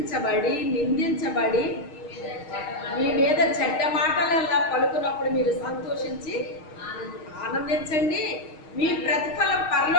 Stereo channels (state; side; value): late; right; 6.4 ms